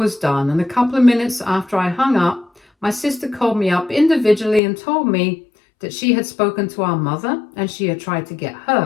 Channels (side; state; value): right; drops out; at 4.6 s